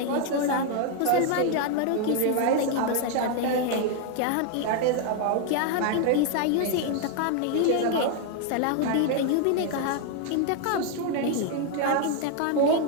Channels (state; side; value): different; both; correlation 0.00